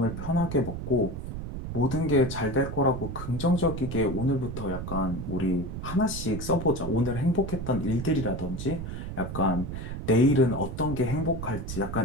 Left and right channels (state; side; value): noise; right; rumble, 6 dB below the sound